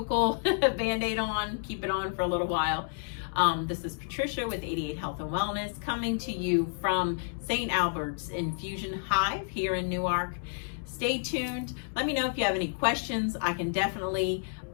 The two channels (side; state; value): right; silent; digital silence